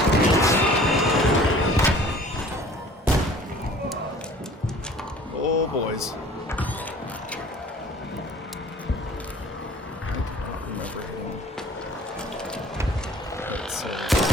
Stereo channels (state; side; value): normal; both; correlation 0.49